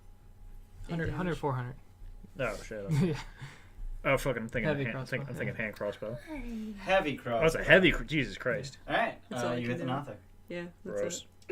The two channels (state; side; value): identical; both; correlation 1.00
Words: 100, 400. Oh shit. Okay. Yeah. Oh fucking I'm thinking Heavy hand, crossbow, I'm thinking hand crossbow. Heavy cross. Oh, it's a heavy. Jesus Christ. Alright, That's all I you can hit the do. Nothic. Yeah, that's Gross.